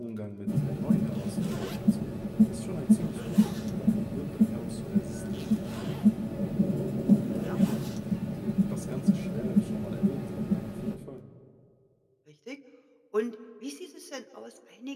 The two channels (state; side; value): identical; both; correlation 1.00